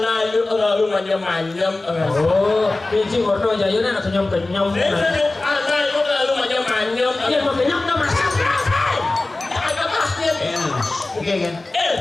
itu lalu manyam-manyam. Oh, biji kotor aja ya nak kenyam. Anak itu lalu manyam-manyam. Iya mau kenyam dah masak. Ada pasnya. Oke kan?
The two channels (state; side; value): quieter; right; 3.0 dB